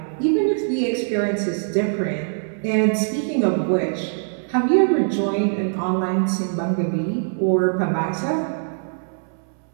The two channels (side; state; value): left; silent; 60 dB below the other